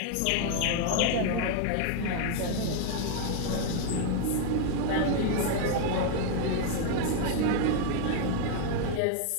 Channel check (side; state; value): both; different; correlation 0.00